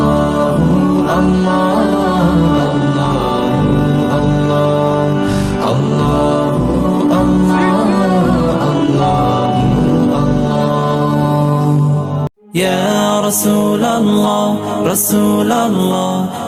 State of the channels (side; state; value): both; identical; correlation 1.00